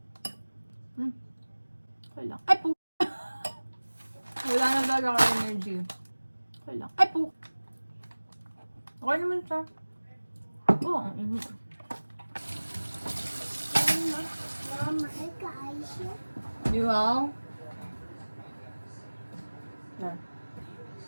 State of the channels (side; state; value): both; inverted; correlation -1.00